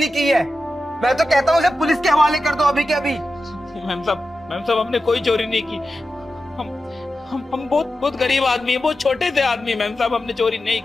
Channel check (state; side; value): normal; both; correlation 0.92